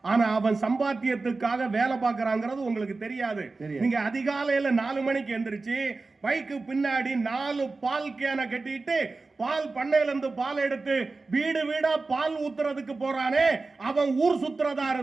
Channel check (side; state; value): left; quieter; 3.7 dB